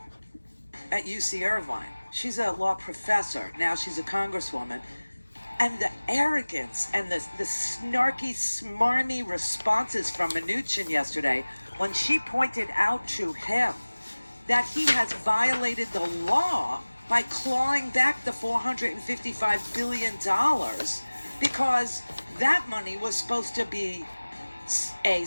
at UC Irvine. She's a law professor. Now she's a congresswoman. And the arrogance and the snarky, smarmy responses from Mnuchin yesterday, when she pointed out to him that he has violated the law by clawing back the $455 billion, because that money was supposed to be A,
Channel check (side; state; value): both; inverted; correlation -1.00